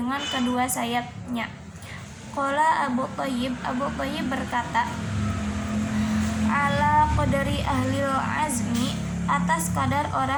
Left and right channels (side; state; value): both; identical; correlation 1.00